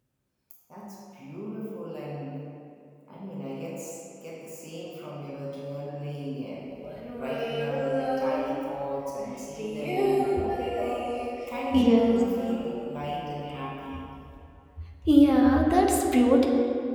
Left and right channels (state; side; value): identical; both; correlation 1.00